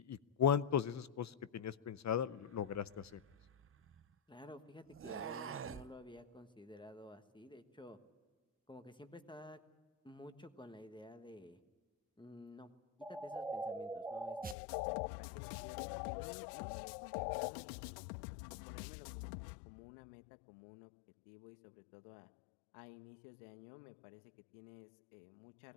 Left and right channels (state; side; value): drops out; right; at 14.6 s